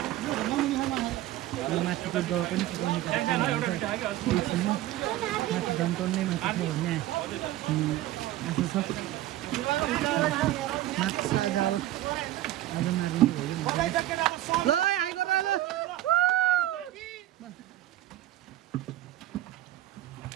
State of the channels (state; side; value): quieter; left; 14.6 dB